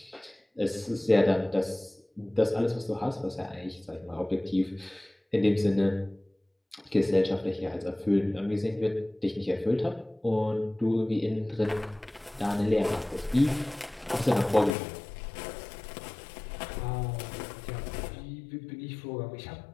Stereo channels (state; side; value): drops out; right; at 14.7 s